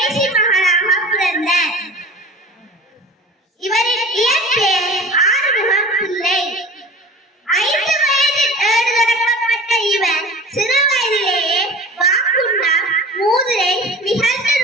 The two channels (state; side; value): normal; both; correlation 0.39